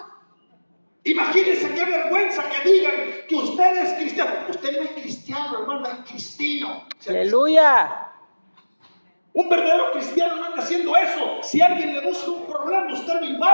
Imagínense qué vergüenza que digan que usted es cristiano. Usted no es cristiano, hermano, es cristino. Aleluya. Un verdadero cristiano no anda haciendo eso. Si alguien le busca un problema, usted lo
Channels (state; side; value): inverted; both; correlation -1.00